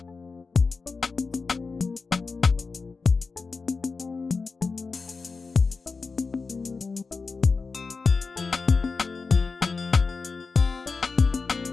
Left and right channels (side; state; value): right; quieter; 4.5 dB